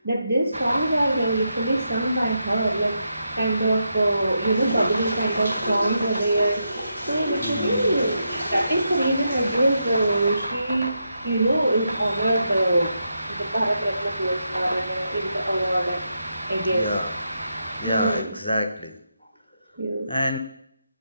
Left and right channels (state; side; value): inverted; both; correlation -0.83